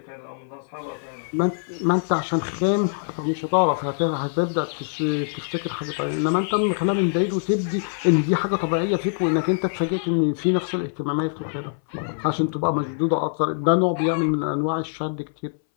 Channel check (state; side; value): silent; right; 61 dB below the other